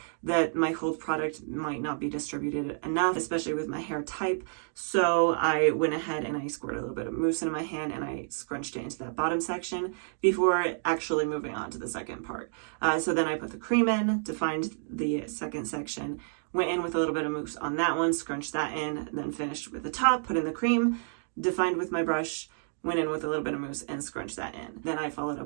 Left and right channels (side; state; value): left; silent; digital silence